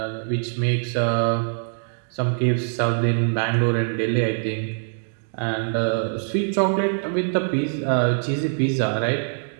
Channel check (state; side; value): silent; left; digital silence